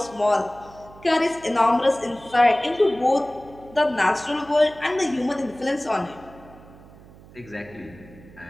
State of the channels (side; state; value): right; noise; hum, 22 dB below the sound